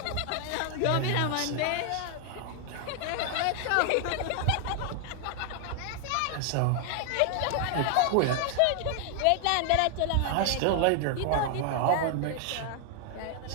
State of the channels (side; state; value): both; different; correlation 0.00